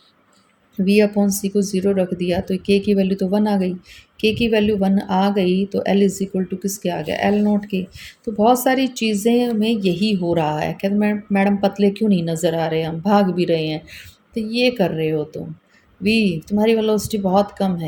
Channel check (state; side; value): identical; both; correlation 1.00